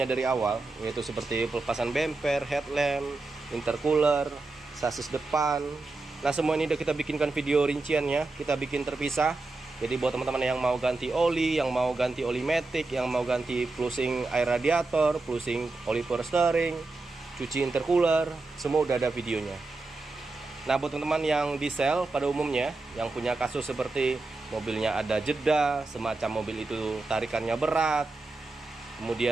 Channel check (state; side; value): quieter; left; 3.4 dB